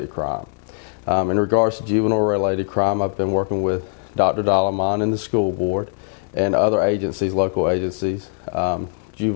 crime. In regards to juvenile-related crime, I've been working with Dr. Dalaman and the school board and other agencies, local agencies,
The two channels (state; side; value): silent; right; digital silence